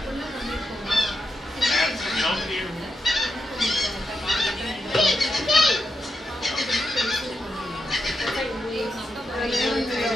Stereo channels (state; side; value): normal; both; correlation 0.85